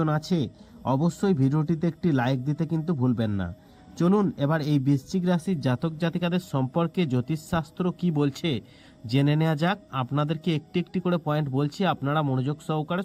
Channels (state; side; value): identical; both; correlation 1.00